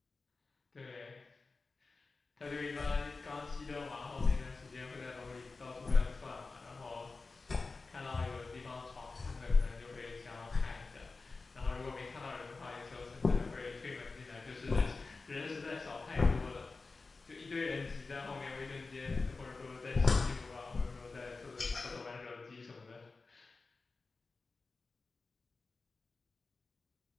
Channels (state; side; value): quieter; right; 3.9 dB